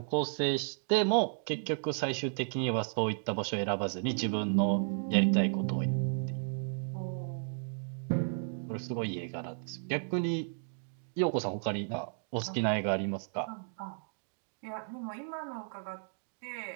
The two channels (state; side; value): silent; left; digital silence